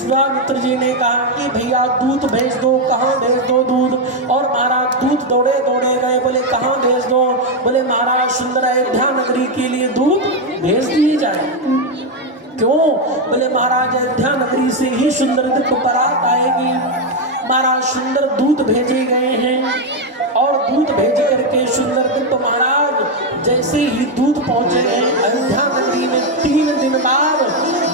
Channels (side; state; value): both; normal; correlation 0.05